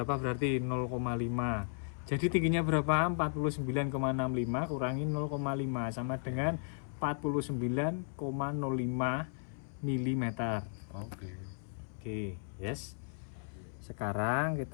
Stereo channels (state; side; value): silent; right; 54 dB below the other